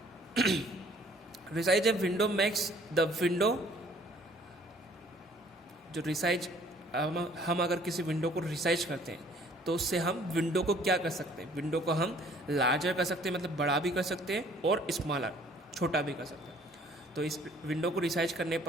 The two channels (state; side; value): normal; both; correlation 0.57